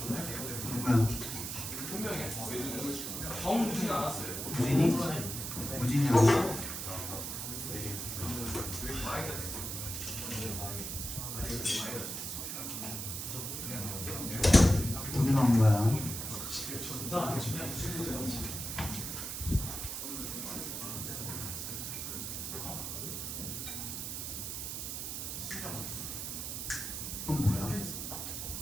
누구야? 2명이야. 정무진 안 왔어요. 무진이? 무진이 아니야? 어디 나온 거야? 그건 뭐야?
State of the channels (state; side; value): noise; right; hiss, 5 dB below the sound